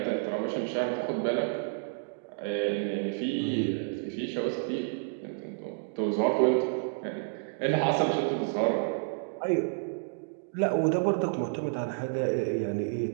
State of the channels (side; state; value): left; silent; digital silence